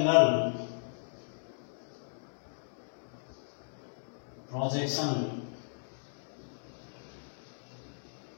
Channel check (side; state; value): right; silent; digital silence